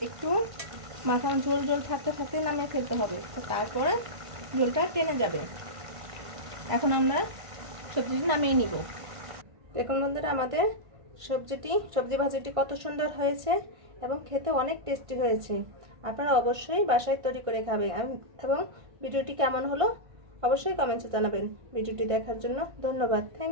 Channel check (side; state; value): left; late; 1.5 ms